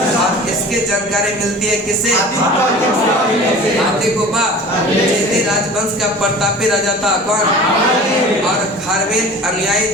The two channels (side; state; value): both; normal; correlation 0.40